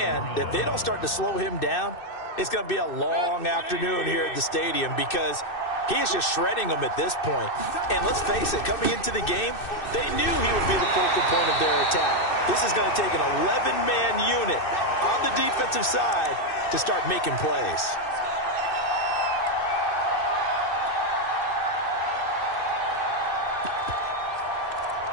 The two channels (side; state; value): right; late; 2.6 ms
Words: that if they don't start to slow him down, it's going to be a long afternoon here at the stadium because he is just shredding them at this point. And let's face it, coming into the game, they knew he would be the focal point of their attack. This is going to take an 11-man unit on the defensive side to start making plays.